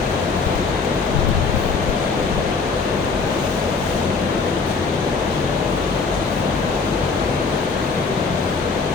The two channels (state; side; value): quieter; right; 4.7 dB